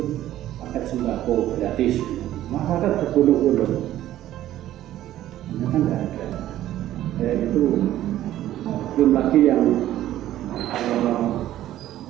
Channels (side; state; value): left; quieter; 13.3 dB